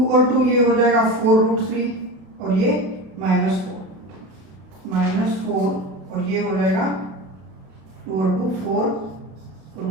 और 2 ये हो जाएगा 4√3 और ये -4 और ये हो जाएगा 2 और 2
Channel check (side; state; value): left; late; 32 ms